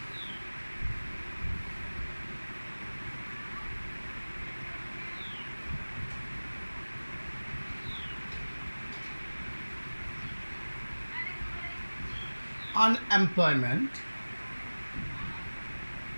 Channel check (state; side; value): inverted; both; correlation -1.00